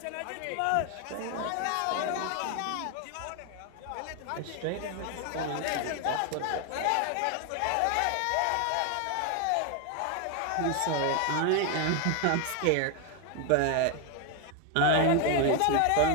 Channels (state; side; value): different; both; correlation 0.01